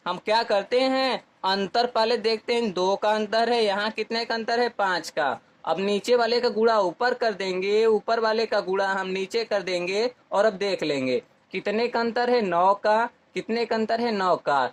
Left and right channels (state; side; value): identical; both; correlation 1.00